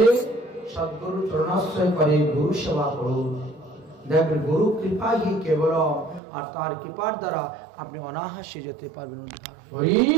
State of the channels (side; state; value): left; drops out; at 6.2 s